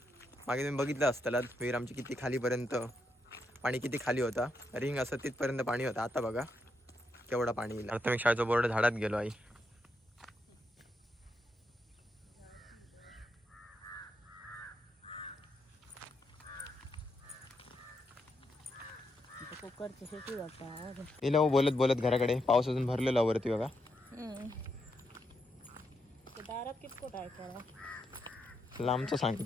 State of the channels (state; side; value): normal; both; correlation 0.81